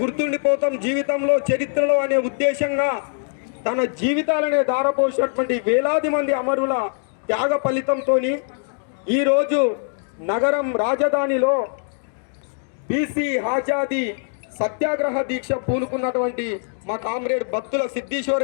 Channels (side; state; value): right; silent; digital silence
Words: గుర్తుండిపోతాం జీవితంలో చరిత్రలో అనే ఉద్దేశంగా తన జీవితాలనే దారపోసినటువంటి వేలాది మంది అమరుల త్యాగ ఫలితంతో ఈరోజు నగరం రాజధానిలో బీసీ ఆజాదీ సత్యాగ్రహ దీక్ష పూనుకున్నటువంటి మా కామ్రేడ్ బత్తుల